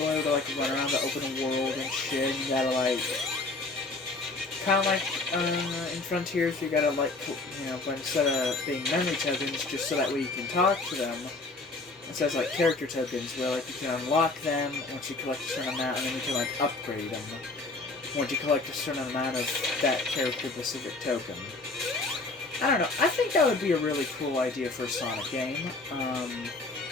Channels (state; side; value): quieter; right; 3.4 dB